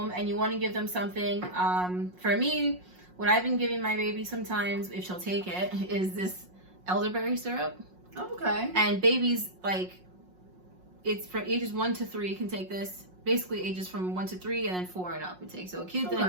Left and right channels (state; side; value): late; left; 5.5 ms